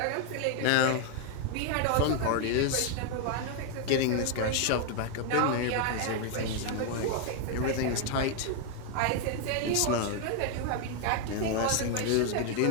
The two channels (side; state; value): both; different; correlation 0.00